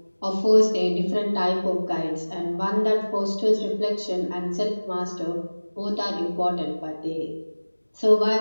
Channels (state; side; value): inverted; both; correlation -1.00